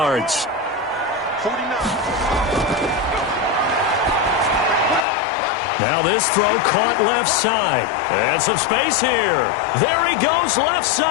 49. Now this throw caught left side. And some space here. There he goes left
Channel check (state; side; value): drops out; right; at 5.1 s